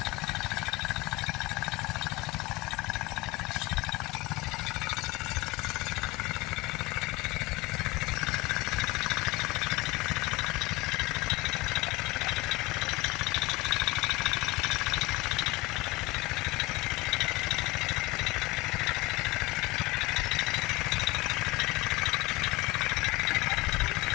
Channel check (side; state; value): right; quieter; 21.8 dB